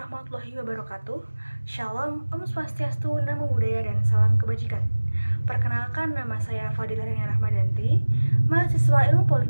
wabarakatuh. Shalom, Om Swastiastu, Namo Buddhaya, dan salam kebajikan. Perkenalkan, nama saya Fadila Rania Rahmadanti, mahasiswa Ilmu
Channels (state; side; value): inverted; both; correlation -1.00